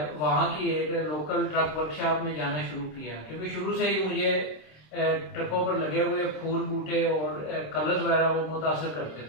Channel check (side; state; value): right; late; 26 ms